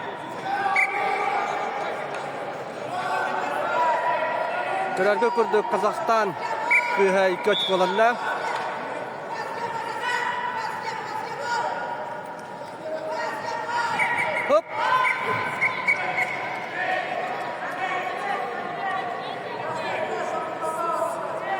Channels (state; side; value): identical; both; correlation 1.00